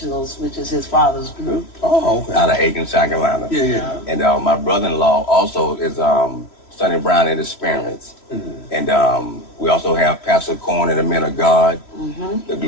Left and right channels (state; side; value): late; right; 3.0 ms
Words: which is his father's group. Oh, okay. Out of Aiken, South Carolina. Yeah. And my brother-in-law also is Sonny Brown and his parents. And we also have Pastor Corn and the Men of God, the